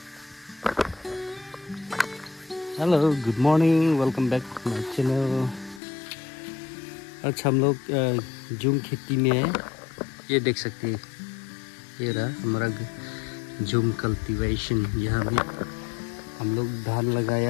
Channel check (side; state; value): right; drops out; at 5.8 s